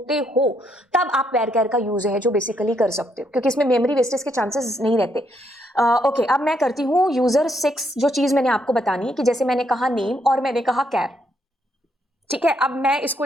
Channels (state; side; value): normal; both; correlation 0.74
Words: हो तब आप वेर कैर का यूज है जो बेसिकली कर सकते हो, क्योंकि इसमें मेमोरी वेस्टेज के चांसेस नहीं रहते। ओके, अब मैं करती हूँ यूजर 6। जो चीज मैंने आपको बतानी है कि जैसे मैंने कहा नेम और मैंने कहा कैर, ठीक है। अब मैं इसको